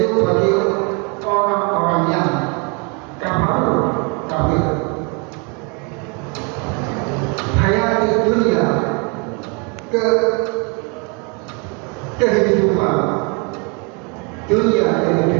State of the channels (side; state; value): left; quieter; 33.2 dB